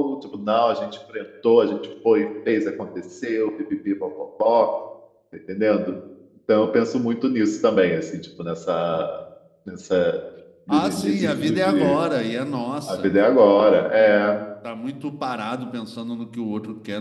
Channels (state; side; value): identical; both; correlation 1.00